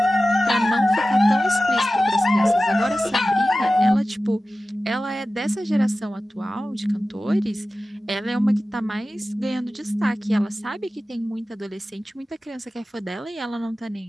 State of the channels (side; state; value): both; normal; correlation 0.95